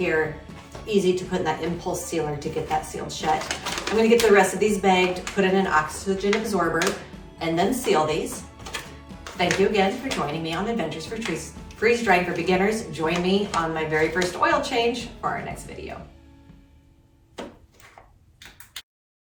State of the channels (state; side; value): identical; both; correlation 1.00